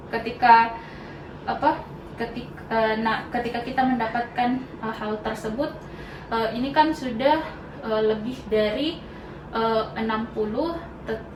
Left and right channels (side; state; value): both; identical; correlation 1.00